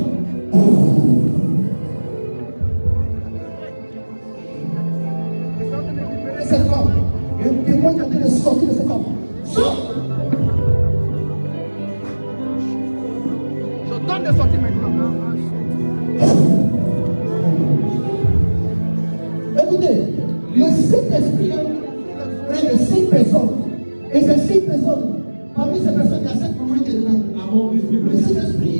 Et cette femme, il y a un témoin qui est en train de sortir de cette femme. Sors! Je donne de sortir maintenant. Écoutez, le Saint-Esprit est près de 6 personnes. Et ces 6 personnes, parmi ces personnes, il y a 7 mamans qui sont là. Among these people, Le Saint-Esprit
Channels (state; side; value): inverted; both; correlation -1.00